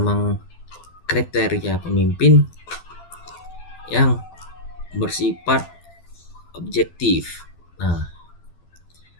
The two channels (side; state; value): right; late; 12 ms